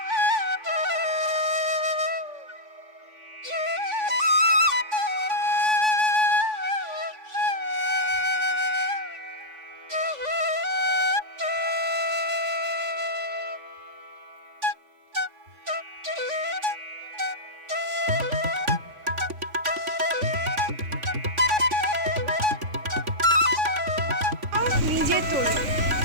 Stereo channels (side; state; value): left; late; 3.5 ms